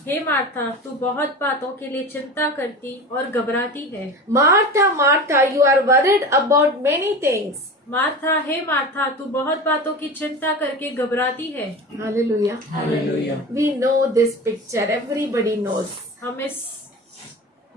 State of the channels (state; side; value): normal; both; correlation 0.31